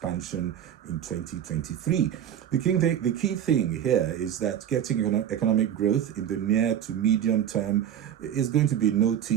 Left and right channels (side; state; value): left; quieter; 9.9 dB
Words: in 2023. The key thing here is that getting economic growth in the near to medium term is going to be no